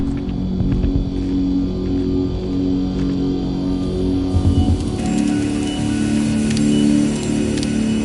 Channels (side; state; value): both; identical; correlation 1.00